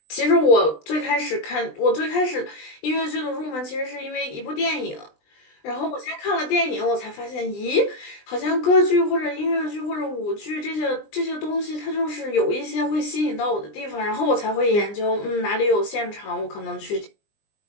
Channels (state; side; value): late; right; 20 ms